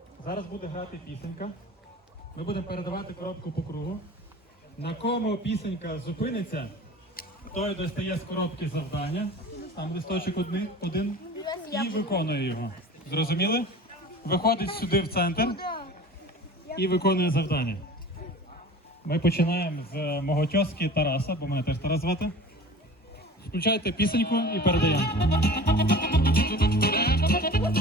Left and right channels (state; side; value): normal; both; correlation 0.40